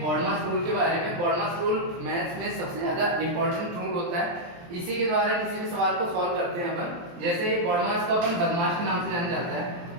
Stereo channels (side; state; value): left; late; 23 ms